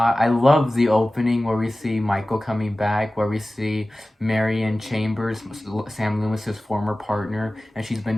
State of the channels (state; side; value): normal; both; correlation 0.97